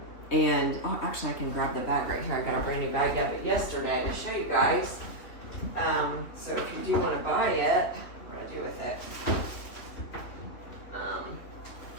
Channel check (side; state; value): right; late; 3.4 ms